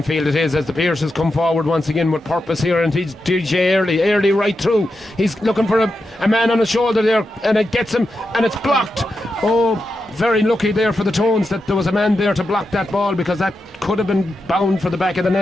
field it is as the Pierces come forward once again with purpose here, and he's DJ early right through. He's looking for a man on his shoulder there, and it gets him, and it's blocked. Oh, very lucky there for the Tones that there was a man there to block that ball, because that could have been bound for the back of the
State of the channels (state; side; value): normal; both; correlation 0.88